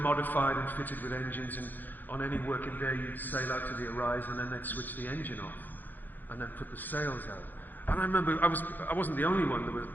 and fitted with engines, and on any working day you'd sail out to the horizon and then they'd switch the engine off and then put the sails out. And I remember I wasn't the only one. There was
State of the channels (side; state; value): right; late; 0.087 ms